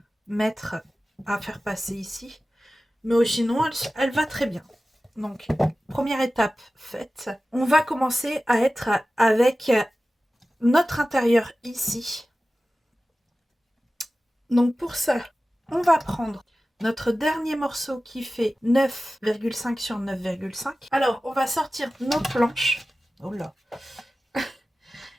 faire passer ici. Mais sinon, elle va très bien. Donc, première étape faite. On va commencer à être avec notre intérieur ici. Donc, pour ça, on va prendre notre dernier morceau qui fait 9,5 sur 9,5. Alors, on va sortir nos planches. Oh là.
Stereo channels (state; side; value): normal; both; correlation 0.96